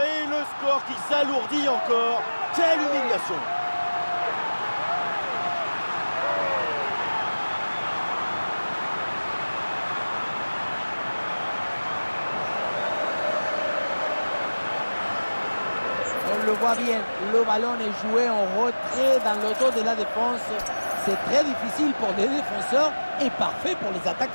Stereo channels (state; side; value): inverted; both; correlation -1.00